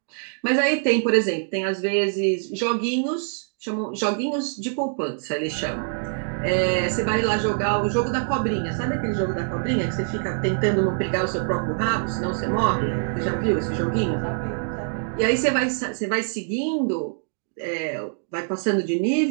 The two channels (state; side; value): silent; left; digital silence